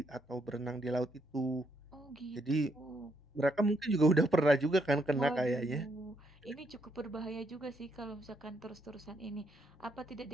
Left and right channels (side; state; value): both; normal; correlation 0.75